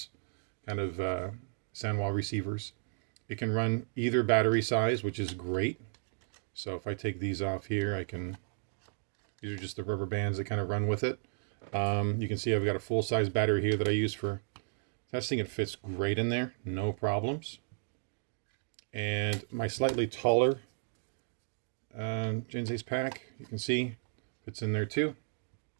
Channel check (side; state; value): left; silent; digital silence